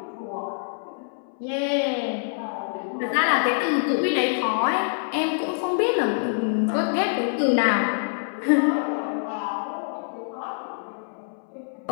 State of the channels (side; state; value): right; silent; 61 dB below the other